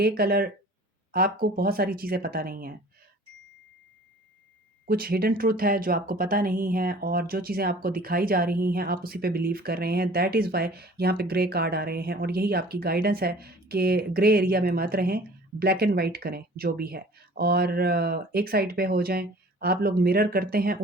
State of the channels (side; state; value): both; normal; correlation 0.48